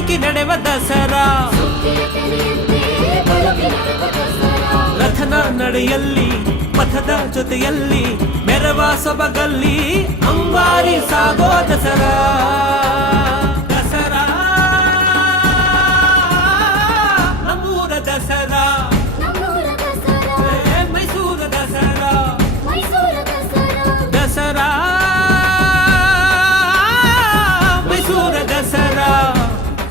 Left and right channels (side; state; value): both; normal; correlation 0.36